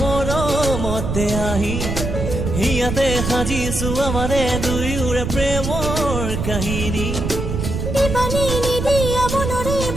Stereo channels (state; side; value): noise; right; rumble, 3 dB below the sound